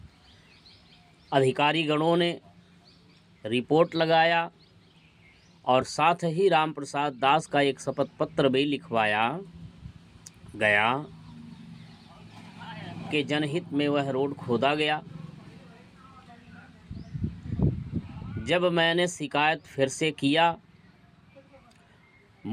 अधिकारी गणों ने रिपोर्ट लगाया और साथ ही राम प्रसाद दास का एक शपथ पत्र भी लिखवाया गया कि जनहित में वह रोड खोदा गया। जब मैंने शिकायत फिर से किया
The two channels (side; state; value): both; identical; correlation 1.00